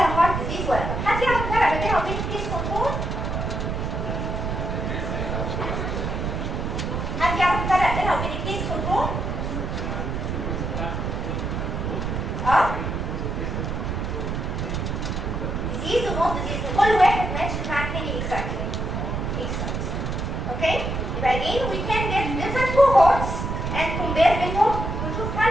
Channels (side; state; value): right; noise; rumble, 2 dB below the sound